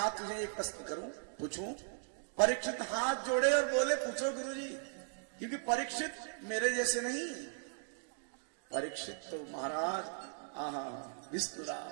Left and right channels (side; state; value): left; silent; digital silence